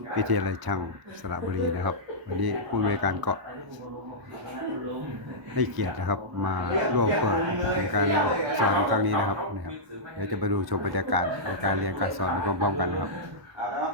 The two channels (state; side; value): late; left; 1.1 ms